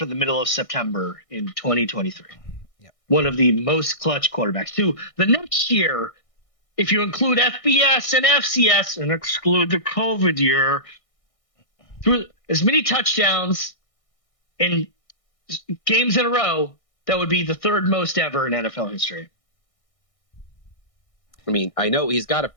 the middle of September in 2023. One of the most clutch quarterbacks. Who the next year, if you include FBS and FCS and exclude the COVID year, threw as many touchdowns in games in a row, that would be the third most ever in NFL history. I mean, I know he's got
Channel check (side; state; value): right; late; 1.6 ms